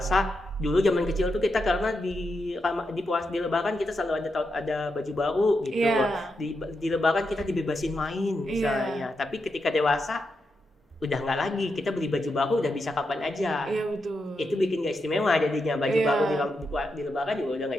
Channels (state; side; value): normal; both; correlation 0.85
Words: dulu zaman kecil tuh kita karena di Lebaran kita selalu ada baju baru gitu. Yeah. Di Lebaran kita dibebasin main misalnya. Tapi ketika dewasa udah nggak lagi, kita beli baju baru udah bisa kapan aja. Iya betul. Itu bikin nggak istimewa jadinya, baju baru di Lebaran juga udah